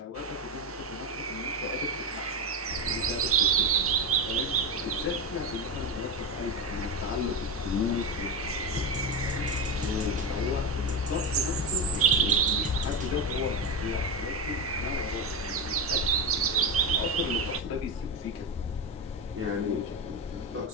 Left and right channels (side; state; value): both; normal; correlation 0.13